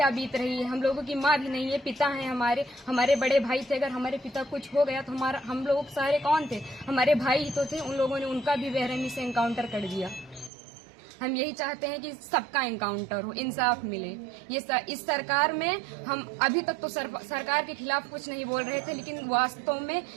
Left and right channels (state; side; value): drops out; left; at 10.5 s